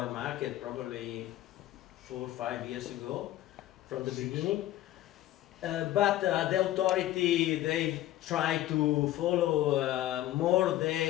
market probably 4 or 5 years ago from the beginning. But the authority, they try to follow more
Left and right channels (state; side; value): quieter; right; 14.5 dB